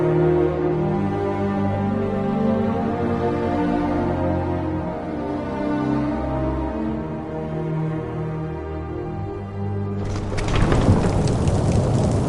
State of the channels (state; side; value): identical; both; correlation 1.00